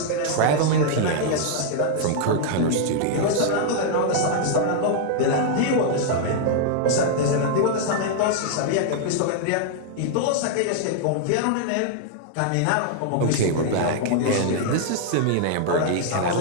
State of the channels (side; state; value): both; different; correlation -0.01